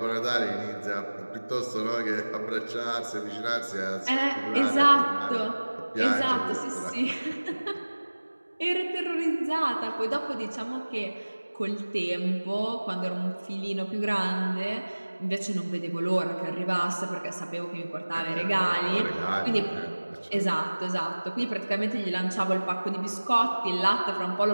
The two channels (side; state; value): both; inverted; correlation -1.00